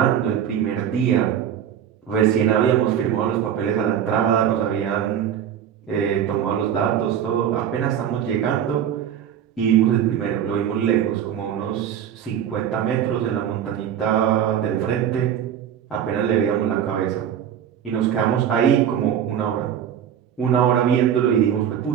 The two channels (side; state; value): left; quieter; 9.3 dB